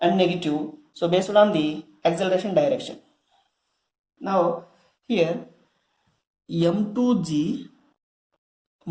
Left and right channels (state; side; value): identical; both; correlation 1.00